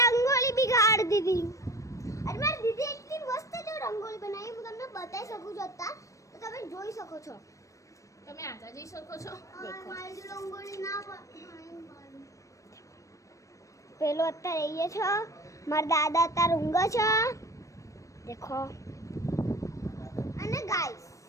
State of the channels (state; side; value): late; right; 0.16 ms